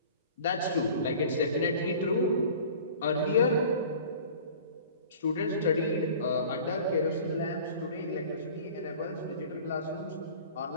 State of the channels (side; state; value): both; inverted; correlation -0.43